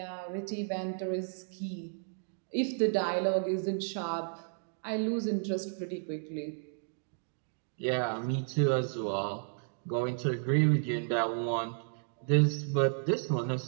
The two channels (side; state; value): left; silent; digital silence